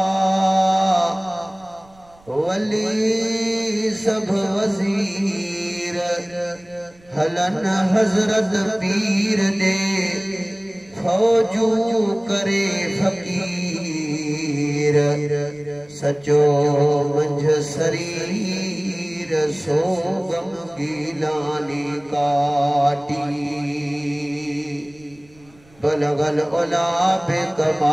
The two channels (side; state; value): right; noise; rumble, 29 dB below the sound